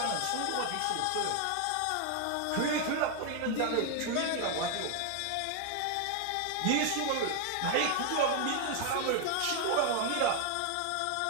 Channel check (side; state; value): both; different; correlation 0.01